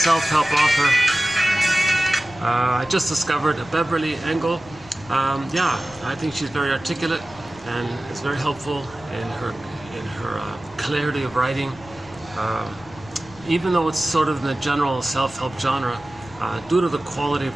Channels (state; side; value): noise; left; rumble, 22 dB below the sound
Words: author. I just discovered Beverly Engel. I think she's very articulate and it's very helpful in her clarity of writing. Even though it's sort of in the general self-help genre, due to the quality of